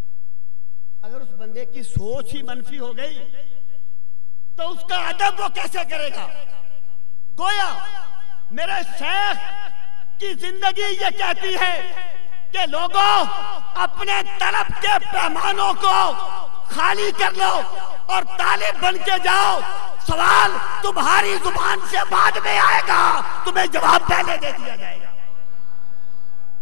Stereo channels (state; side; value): silent; right; digital silence